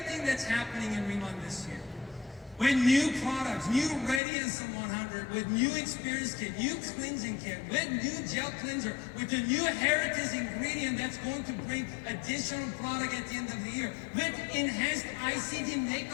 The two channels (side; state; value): right; drops out; at 4.2 s